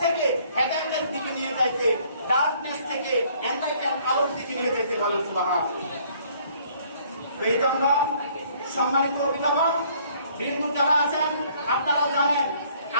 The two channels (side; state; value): both; inverted; correlation -0.61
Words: থেকে হেদায়েতের দিকে নিয়ে যাইতে, ডার্কনেস থেকে এনলাইটেন আলোর দিকে নিয়ে যাইতে। বলেন সুবহানাল্লাহ। বেতনরা সম্মানিত অভিভাবক বৃন্দ যারা আছেন, আপনারা জানেন